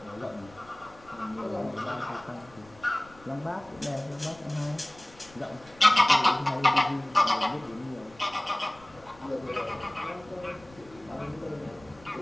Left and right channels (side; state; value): left; noise; rumble, 24 dB below the sound